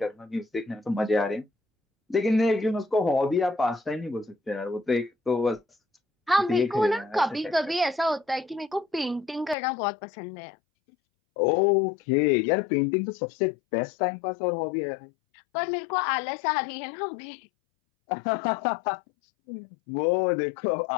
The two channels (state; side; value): drops out; right; at 9.6 s